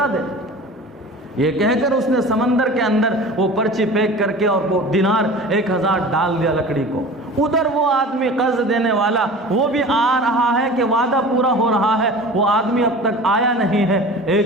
دے. یہ کہہ کر اس نے سمندر کے اندر وہ پرچی پیک کر کے اور وہ دینار 1000 ڈال دیا لکڑی کو. ادھر وہ آدمی قرض دینے والا وہ بھی آ رہا ہے کہ وعدہ پورا ہو رہا ہے، وہ آدمی اب تک آیا نہیں ہے.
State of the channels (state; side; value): normal; both; correlation 0.38